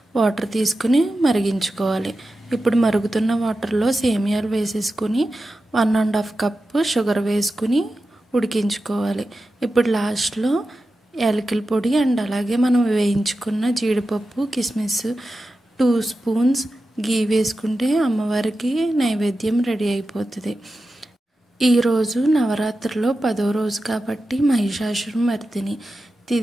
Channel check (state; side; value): normal; both; correlation 0.92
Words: వాటర్ తీసుకుని మరిగించుకోవాలి. ఇప్పుడు మరుగుతున్న వాటర్లో సేమియాలు వేసేసుకుని 1.5 కప్పు షుగర్ వేసుకుని ఉడికించుకోవాలి. ఇప్పుడు లాస్ట్లో యాలకుల పొడి అండ్ అలాగే మనం వేయించుకున్న జీడిపప్పు కిస్మిస్ 2 స్పూన్స్ గీ వేసుకుంటే అమ్మవారికి నైవేద్యం రెడీ అయిపోతుంది. ఈరోజు నవరాత్రిలో 10వ రోజు కాబట్టి మహిషాసురమర్దిని